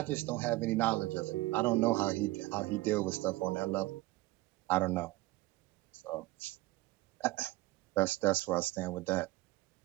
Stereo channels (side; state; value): left; quieter; 19.3 dB